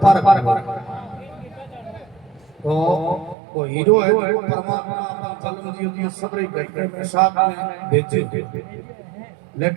पार तो वो हीरो है जो परमात्मा अपन कलम जी सबरे घटने में साथ में भेजे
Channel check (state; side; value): drops out; left; at 3.4 s